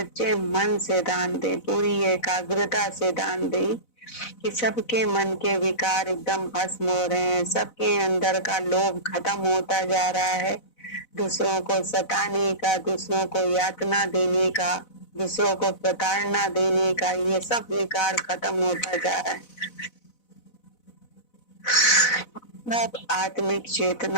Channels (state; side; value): late; right; 4.0 ms